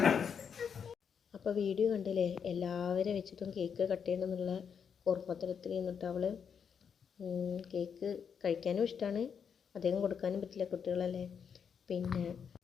അപ്പോൾ video കണ്ടില്ലേ, എല്ലാവരും വെച്ചിട്ടും cake cut ചെയ്യണമെന്നുള്ള ഓർമ്മത്തരത്തിൽ നിന്നിട്ട് അവൾ കേക്ക് കഴിക്കാനും ഇഷ്ടമാണ്, അധികം കൊടുക്കാനും പറ്റില്ല, കുട്ടികളല്ലേ. പിന്നെ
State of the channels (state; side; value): quieter; right; 7.0 dB